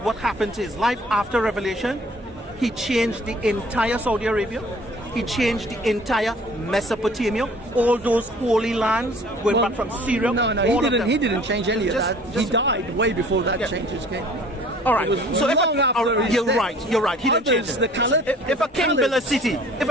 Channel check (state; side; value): normal; both; correlation 0.51